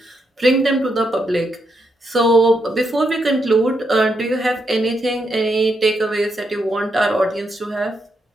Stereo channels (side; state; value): both; normal; correlation 0.80